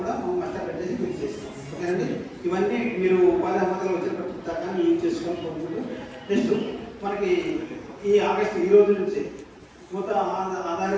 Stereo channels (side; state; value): both; identical; correlation 1.00